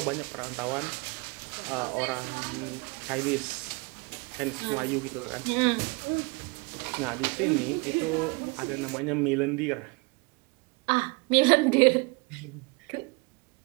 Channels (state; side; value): quieter; left; 29.0 dB